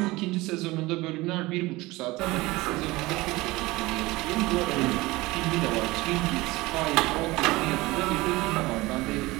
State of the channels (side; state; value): left; quieter; 20.7 dB